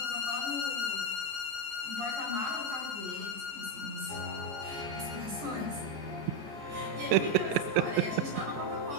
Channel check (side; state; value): left; late; 14 ms